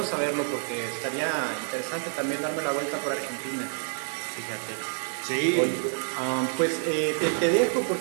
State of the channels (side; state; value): left; silent; 59 dB below the other